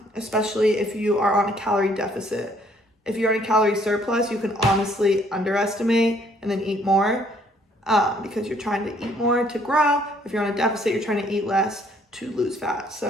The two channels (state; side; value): normal; both; correlation 0.64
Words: especially if you are on a calorie deficit. If you're in a calorie surplus, you can honestly underestimate and then eat more because you're trying to eat more to grow. If you're on a deficit, you're trying to eat less to lose fat.